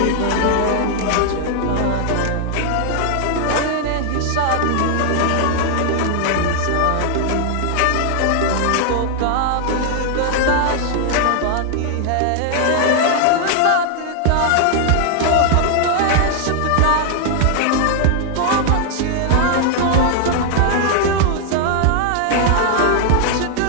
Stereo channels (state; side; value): different; both; correlation 0.00